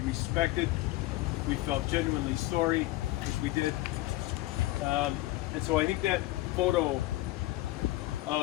respected, we felt genuinely sorry, which we did. And so I think that photo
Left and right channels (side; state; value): right; quieter; 18.2 dB